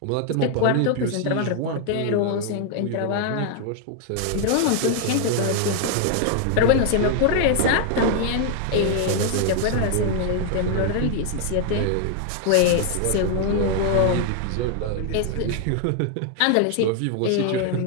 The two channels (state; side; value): different; both; correlation 0.00